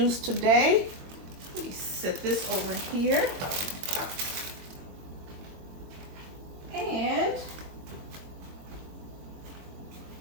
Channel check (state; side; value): late; left; 22 ms